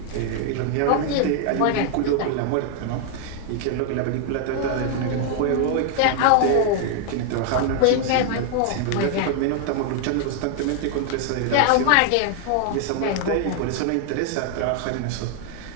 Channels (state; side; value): different; both; correlation 0.00